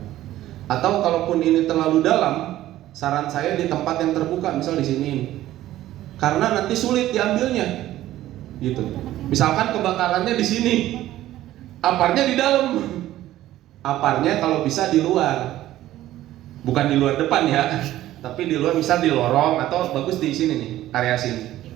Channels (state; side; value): quieter; left; 14.3 dB